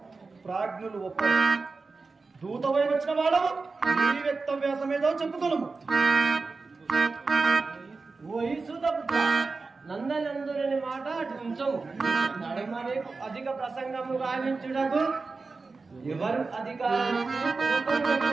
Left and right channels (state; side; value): quieter; left; 4.1 dB